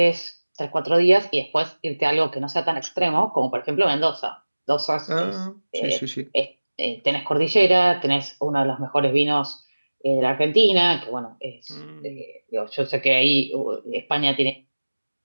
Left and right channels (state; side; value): inverted; both; correlation -1.00